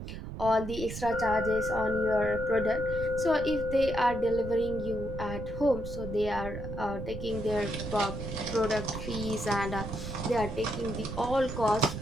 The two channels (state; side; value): noise; right; rumble, 8 dB below the sound